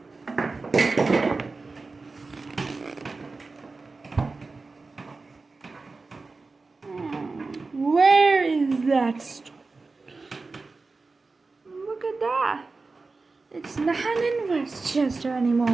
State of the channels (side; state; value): left; quieter; 3.9 dB